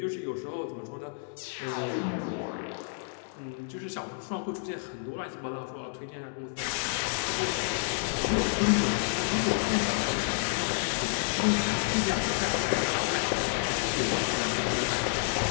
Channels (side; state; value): right; silent; digital silence